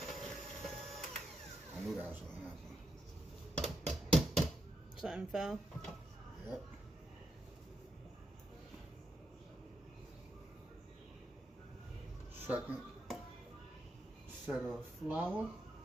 I knew that was gonna happen. something fell. Yep. Second set of flour,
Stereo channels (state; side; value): normal; both; correlation 0.82